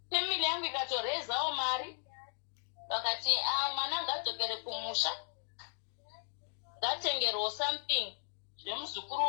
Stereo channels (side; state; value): right; silent; 54 dB below the other